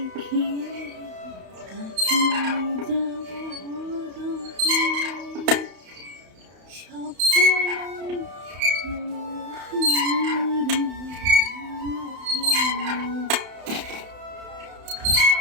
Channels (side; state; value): left; late; 31 ms